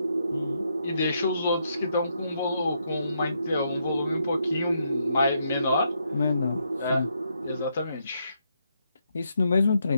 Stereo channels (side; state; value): both; inverted; correlation -0.78